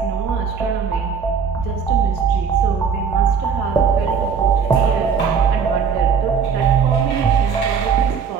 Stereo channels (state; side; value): quieter; left; 6.2 dB